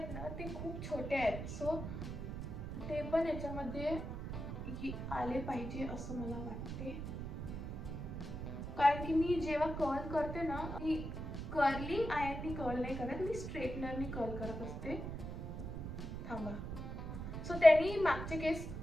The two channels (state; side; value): noise; right; rumble, 6 dB below the sound